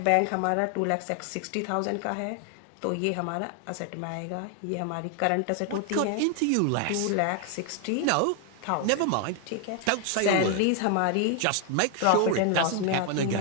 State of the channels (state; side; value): different; both; correlation 0.00